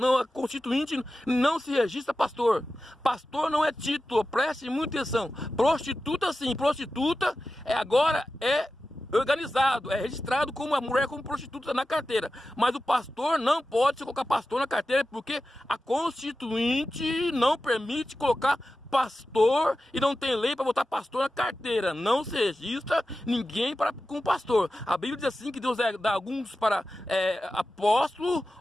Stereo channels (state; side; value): normal; both; correlation 0.93